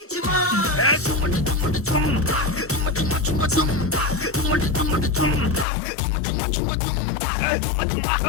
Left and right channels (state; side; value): drops out; right; at 5.7 s